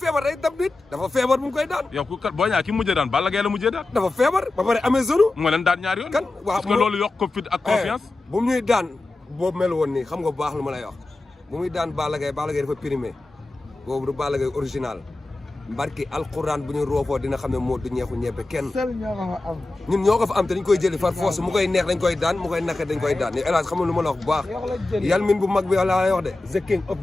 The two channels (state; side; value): quieter; right; 3.0 dB